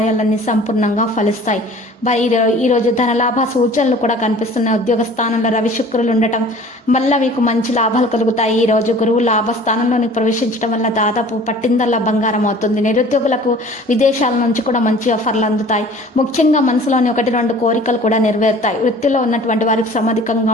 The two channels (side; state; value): both; normal; correlation 0.47